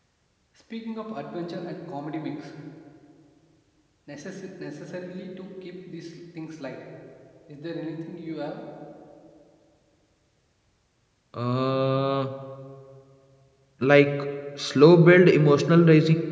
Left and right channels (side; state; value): both; identical; correlation 1.00